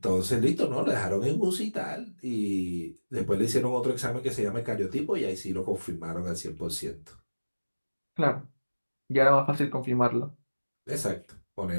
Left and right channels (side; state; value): both; inverted; correlation -1.00